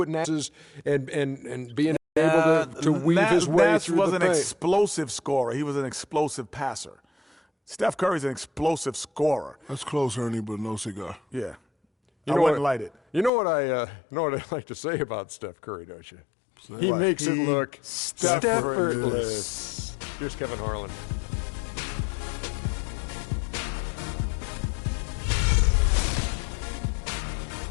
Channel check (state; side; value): drops out; right; at 13.3 s